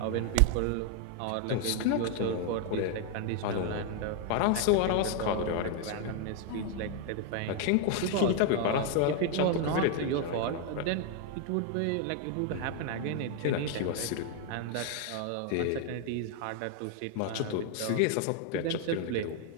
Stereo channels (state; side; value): different; both; correlation 0.00